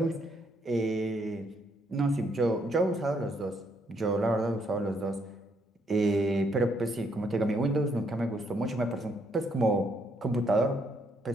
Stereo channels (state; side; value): normal; both; correlation 0.72